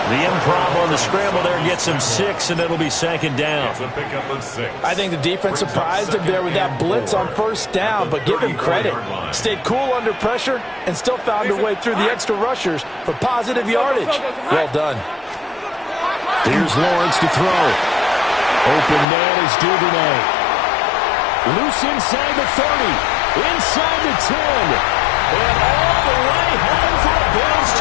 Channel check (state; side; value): drops out; right; at 19.1 s